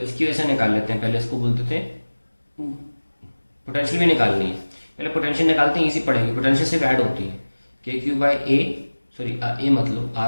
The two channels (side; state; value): both; inverted; correlation -1.00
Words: इसकी वजह से निकाल लेते हैं. पहले इसको बोलते थे पोटेंशियल भी निकालनी है. पहले पोटेंशियल निकालते हैं, इजी पड़ेगी. पोटेंशियल सिर्फ ऐड होती है के क्यू बाई ए, सॉरी ए मत लो,